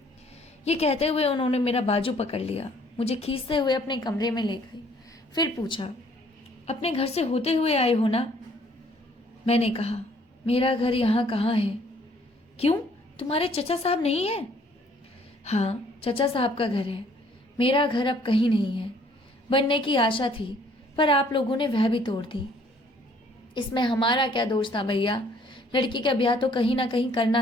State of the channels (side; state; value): both; normal; correlation 0.61